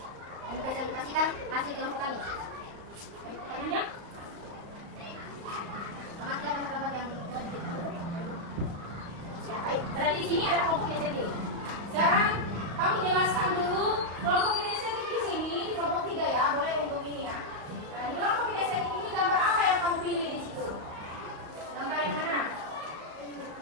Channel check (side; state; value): left; late; 35 ms